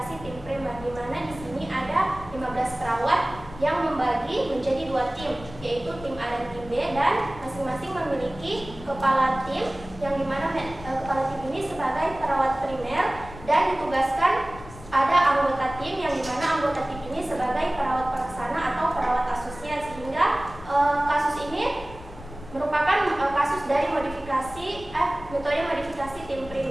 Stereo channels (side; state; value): left; noise; rumble, 15 dB below the sound